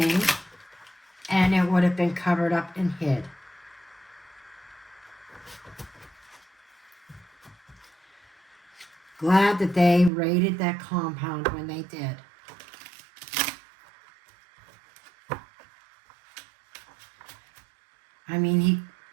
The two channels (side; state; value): left; drops out; at 10.1 s